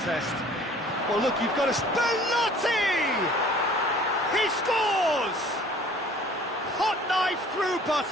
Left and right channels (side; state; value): both; normal; correlation 0.51